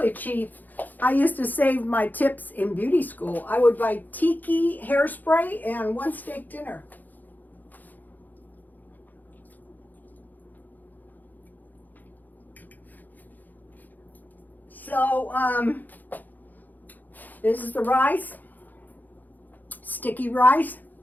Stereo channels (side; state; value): right; late; 0.084 ms